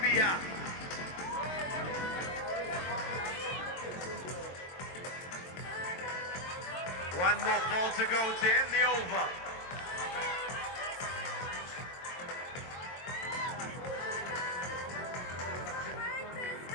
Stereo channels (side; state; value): right; late; 22 ms